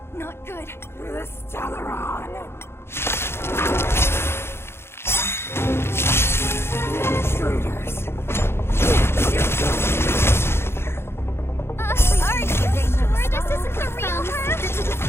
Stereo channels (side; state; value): right; late; 0.12 ms